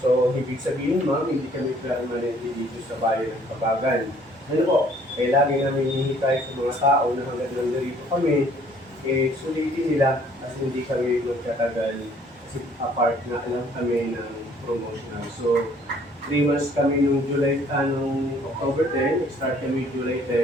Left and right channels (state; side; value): normal; both; correlation 0.59